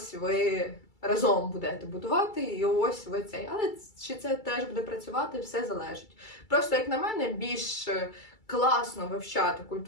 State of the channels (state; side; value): late; right; 2.3 ms